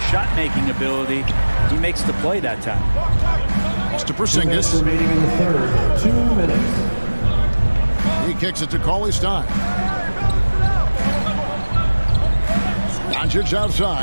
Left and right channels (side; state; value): both; inverted; correlation -1.00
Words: shot-making ability, he makes the play that time. It's to Porzingis. Remaining in the third. 2 minutes. He kicks it to Cauley Stein. Doncic